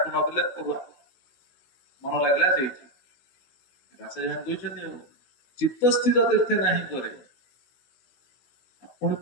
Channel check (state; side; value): late; right; 16 ms